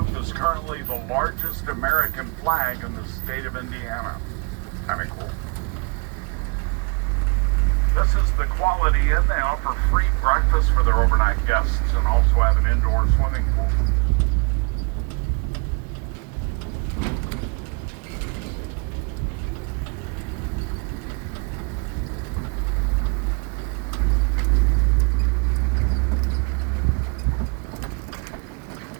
is currently the largest American flag in the state of Indiana. Kind of cool. This is the Quality Inn. They offer free breakfast for their overnight guests and also have an indoor swimming pool.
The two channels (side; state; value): left; quieter; 33.6 dB